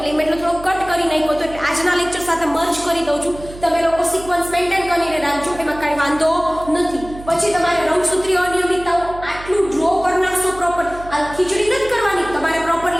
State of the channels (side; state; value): right; noise; hum, 15 dB below the sound